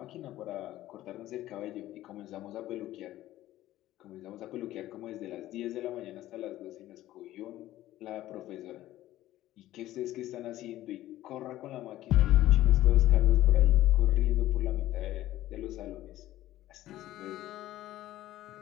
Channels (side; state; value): right; quieter; 14.8 dB